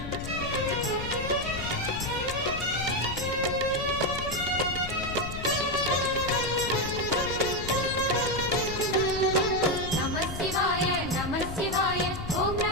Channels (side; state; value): left; noise; rumble, 8 dB below the sound